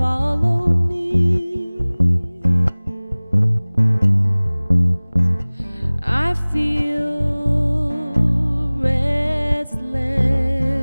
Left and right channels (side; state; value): both; inverted; correlation -1.00